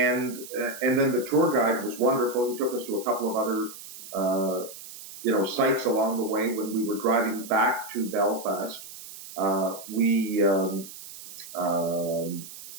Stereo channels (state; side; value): noise; right; hiss, 14 dB below the sound